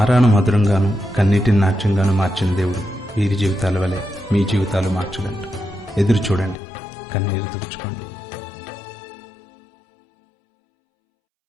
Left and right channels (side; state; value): right; drops out; at 6.6 s